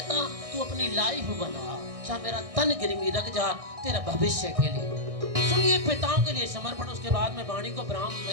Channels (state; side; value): late; left; 1.6 ms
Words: तू अपनी लाइफ बना, चाहे मेरा तन गिरवी रख जा तेरा भविष्य के लिए। सुनिए पिताओं के लिए समर्पण, उसके बाद मैं वाणी को ब्राह्म